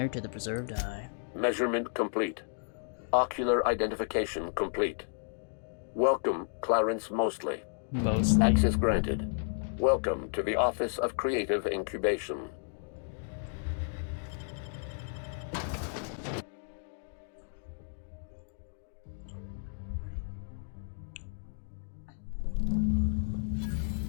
to the preserved eye. Measurement complete. Ocular identification complete. Welcome, Clarence Mostly. Mostly. Access granted. Welcome to the Office of Creative Incubation.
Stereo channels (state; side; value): silent; right; digital silence